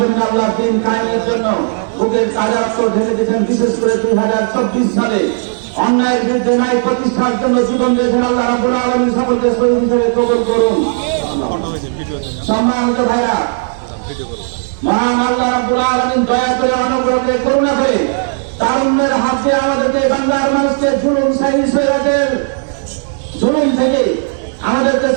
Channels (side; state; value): left; silent; 65 dB below the other